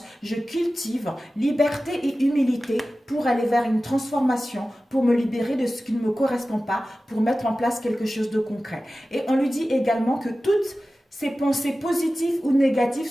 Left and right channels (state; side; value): normal; both; correlation 0.95